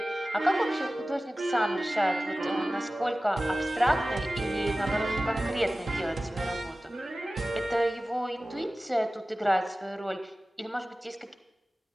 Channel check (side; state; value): both; normal; correlation 0.96